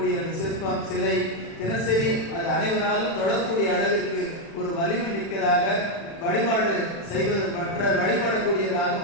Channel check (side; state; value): right; late; 36 ms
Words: அந்த சிற்பம், சிலை தினசரி அது அனைவராலும் தொழக்கூடிய அளவிற்கு ஒரு வலிமை மிக்கதாக வழிபாடு செய்வது, மற்ற வழிபடக்கூடியதாக